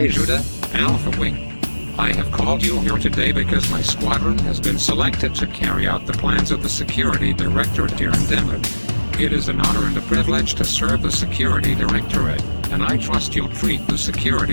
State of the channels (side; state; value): both; inverted; correlation -1.00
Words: Judah, Alpha Wing. I have called you here today because my squadron has been selected to carry out the plans of the Security Directorate here in Denver. It is an honor and a privilege to serve the Security Directorate, and I trust you'll treat the